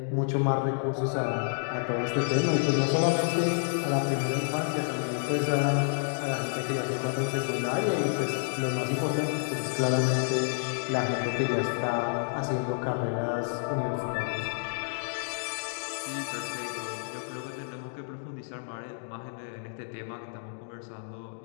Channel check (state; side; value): silent; right; digital silence